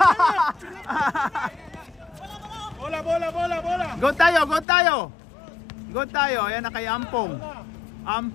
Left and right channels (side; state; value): right; drops out; at 4.7 s